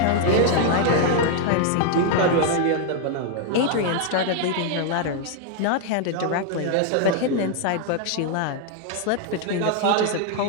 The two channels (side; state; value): both; different; correlation 0.00